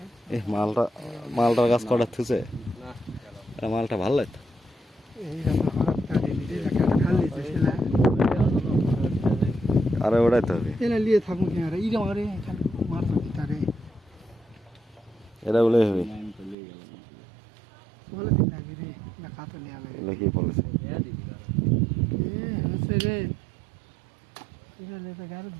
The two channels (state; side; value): drops out; left; at 16.6 s